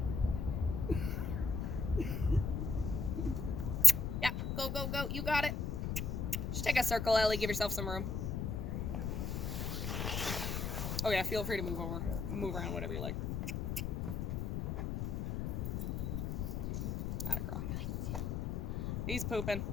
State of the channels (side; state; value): left; noise; rumble, 1 dB below the sound